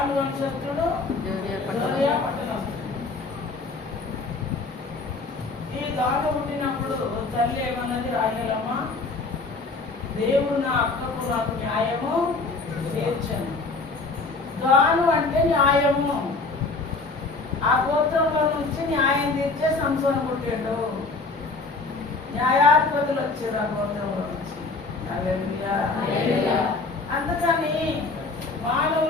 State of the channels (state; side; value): quieter; right; 3.7 dB